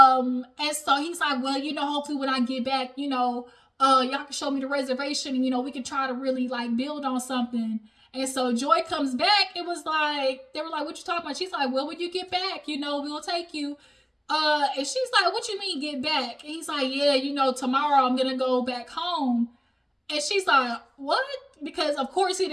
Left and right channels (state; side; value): identical; both; correlation 1.00